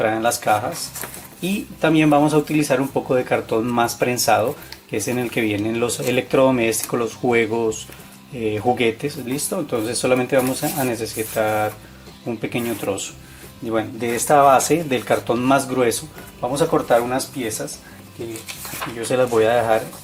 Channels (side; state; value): both; identical; correlation 1.00